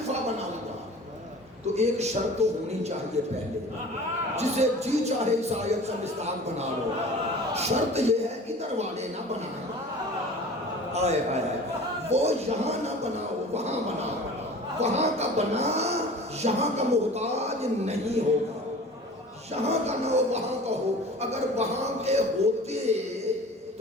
ایک شرط تو ہونی چاہیے پہلے، جسے جی چاہے اس آیت سے مستاق بنا لو، شرط یہ ہے ادھر والے نہ بنائیں، آئے آئے وہ یہاں نہ بناؤ وہاں بناؤ، وہاں کا بنا یہاں کا محتاج نہیں ہوگا، یہاں کا نہ ہو وہاں کا ہو، اگر وہاں کے ہوتے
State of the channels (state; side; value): normal; both; correlation 0.41